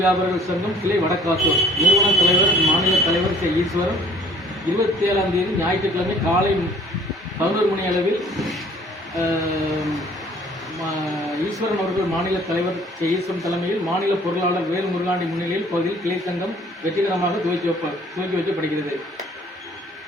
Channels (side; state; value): both; normal; correlation 0.55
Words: சங்கம் கிளை வடக்காத்தூர் நிறுவன தலைவர் மாநில தலைவர் கே ஈஸ்வரன் 27ஆம் தேதி ஞாயிற்றுக்கிழமை காலை 11 மணி அளவில் ஈஸ்வரன் அவர்கள் மாநில தலைவர் கே ஈஸ்வரன் தலைமையில் மாநில பொருளாளர் வேலு முருகாண்டி முன்னிலையில் பகுதியில் கிளை சங்கம் வெற்றிகரமாக துவக்கி வைக்கப்படுகிறது.